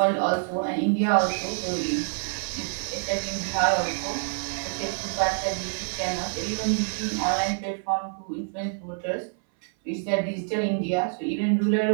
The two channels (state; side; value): silent; left; 58 dB below the other